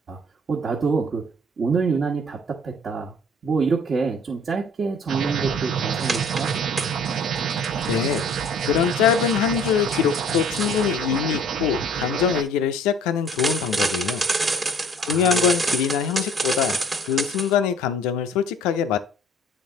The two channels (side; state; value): both; normal; correlation 0.52